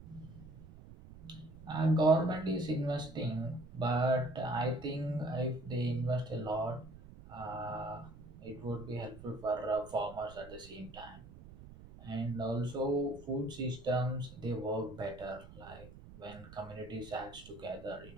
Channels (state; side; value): noise; right; rumble, 17 dB below the sound